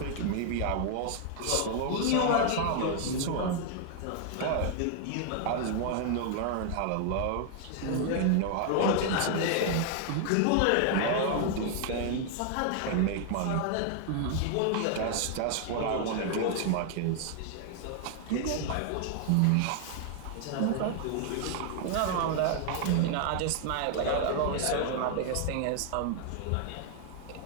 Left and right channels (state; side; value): different; both; correlation 0.00